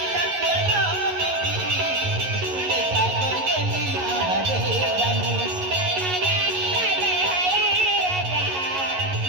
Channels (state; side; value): late; left; 11 ms